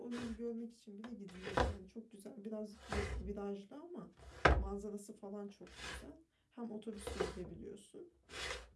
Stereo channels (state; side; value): identical; both; correlation 1.00